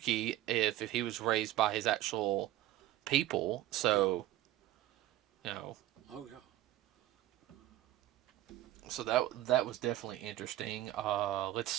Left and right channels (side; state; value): left; quieter; 14.5 dB